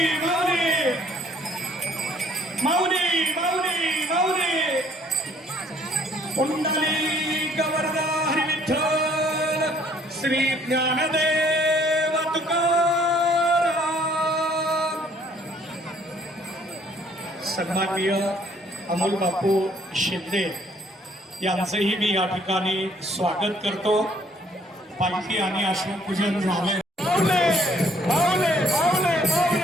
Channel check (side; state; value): both; normal; correlation 0.62